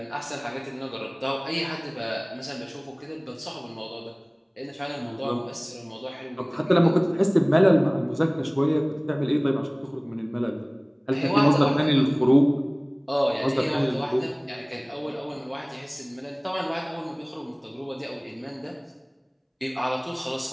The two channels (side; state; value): both; identical; correlation 1.00